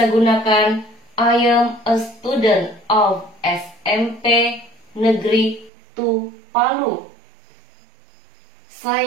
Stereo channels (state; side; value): drops out; left; at 5.7 s